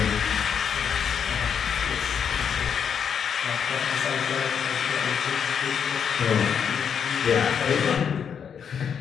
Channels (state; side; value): quieter; right; 7.5 dB